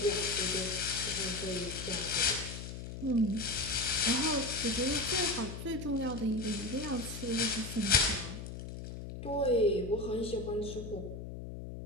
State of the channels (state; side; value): noise; left; hum, 9 dB below the sound